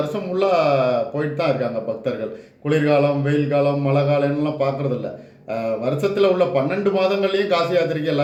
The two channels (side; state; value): both; identical; correlation 1.00